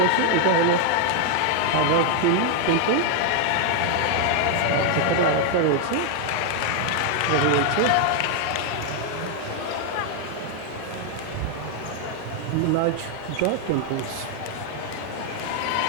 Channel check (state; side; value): different; both; correlation 0.00